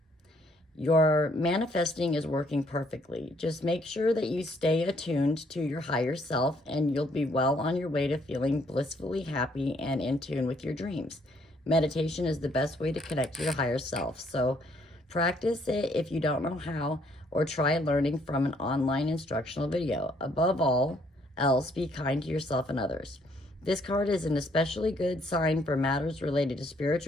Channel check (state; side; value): normal; both; correlation 0.67